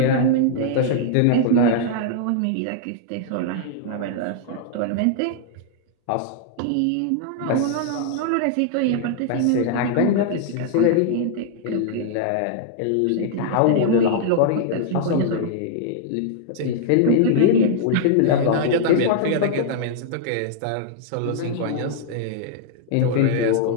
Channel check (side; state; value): both; different; correlation -0.01